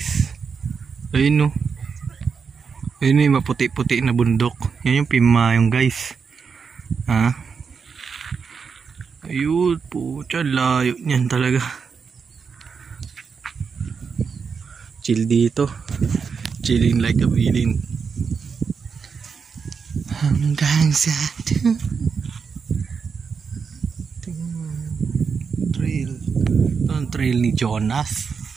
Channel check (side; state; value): left; quieter; 5.8 dB